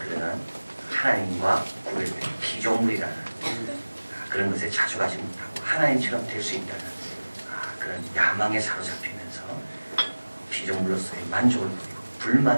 하나님과 구별된 피조물이라는 그런 것에 자족하지 못하고 하나님처럼 될 수 있다는 그런 야망에 사로잡히면서 피조물로서의 만족을 부리고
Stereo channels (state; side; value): inverted; both; correlation -1.00